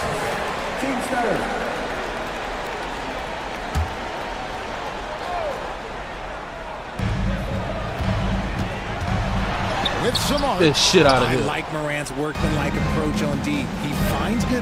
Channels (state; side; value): identical; both; correlation 1.00